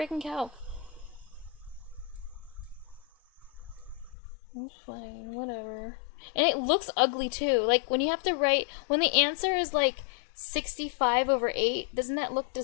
calc. It's fine. Whatever. And it looks ugly too. Like when you have to write... When the answer is like 65/8, doesn't that look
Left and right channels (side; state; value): right; drops out; at 4.2 s